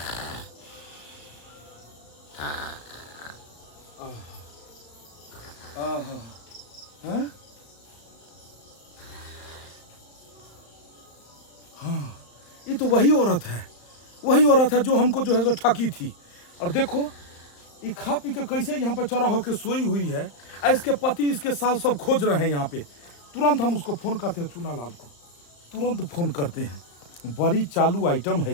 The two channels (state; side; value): late; right; 35 ms